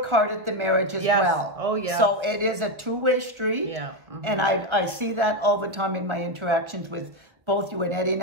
hard at the marriage as well. Oh yeah. So it is a two-way street. Yeah. Mm-hmm. And I see that all the time in my interactions with both you and Eddie.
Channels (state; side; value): late; left; 1.3 ms